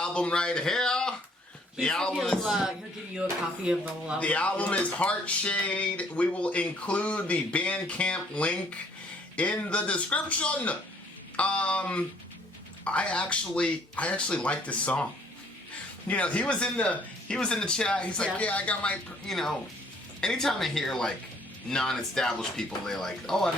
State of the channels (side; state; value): both; normal; correlation 0.62